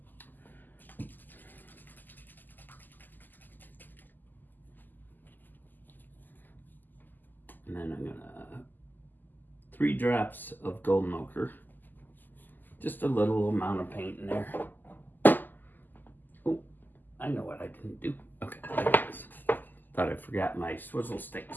And then I'm going to 3 drops of golden ochre. Just a little amount of paint in there. Oh, I know what I didn't do. Okay, there it is. Thought I forgot my swizzle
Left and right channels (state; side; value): late; right; 0.087 ms